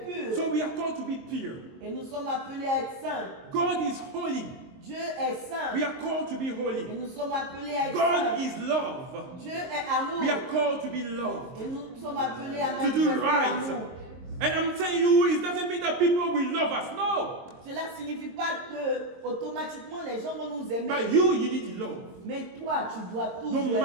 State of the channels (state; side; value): late; left; 23 ms